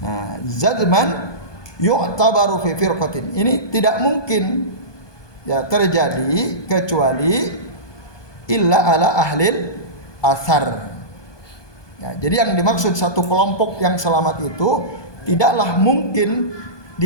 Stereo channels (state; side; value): late; right; 1.2 ms